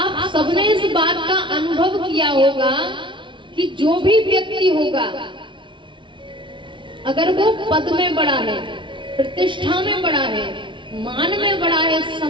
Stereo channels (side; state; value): left; late; 0.24 ms